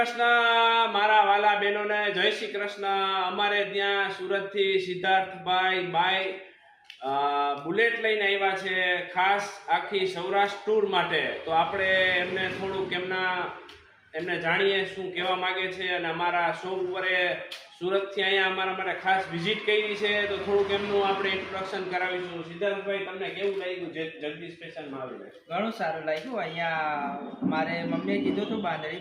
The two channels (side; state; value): both; identical; correlation 1.00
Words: મારા વાલા બહેનોને જય શ્રી કૃષ્ણ। અમારે ત્યાં સુરતથી સિદ્ધાર્થભાઈ બાઈ બુલેટ લઈને આવ્યા છે ખાસ આખી સૌરાષ્ટ્ર ટૂર માટે। તો આપણે એમને થોડુંક એમને જાણીએ શું કહેવા માંગે છે અને અમારા શો ઉપર સુરતથી અહીંયા અમારા માટે ખાસ વિઝિટ કરી છે તો થોડુંક એમનું આપણે ઇન્ટ્રોડક્શન કરાવીશું। સિદ્ધાર્થભાઈ, તમને કેવું લાગ્યું જગદીશ સ્ટેશનમાં આવીને? ઘણું સારું લાગ્યું। અહીંયા મારે મમ્મીએ કીધું હતું બાંધણી